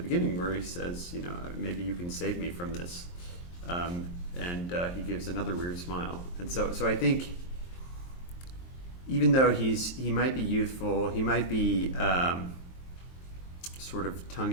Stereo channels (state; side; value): late; right; 23 ms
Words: beginning where he says, you know, maybe you can save me from this, and he gives another weird smile. And so I think even though he might be youthful, he might be sort of tongue